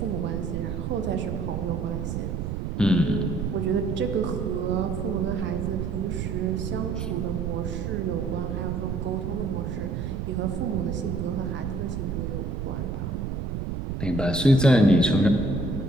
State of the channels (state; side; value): noise; right; rumble, 3 dB below the sound